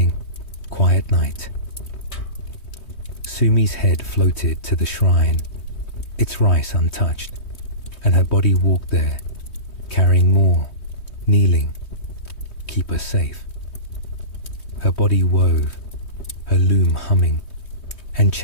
"Quiet night." Sumi's head floated to the shrine, its rice untouched, and her body walked there, carrying more, kneeling, "Keep us safe." Her body wove, her loom humming, and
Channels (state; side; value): late; right; 3.2 ms